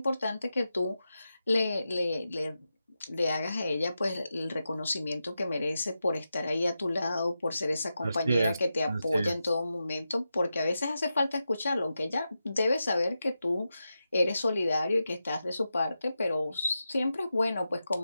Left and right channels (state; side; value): inverted; both; correlation -0.90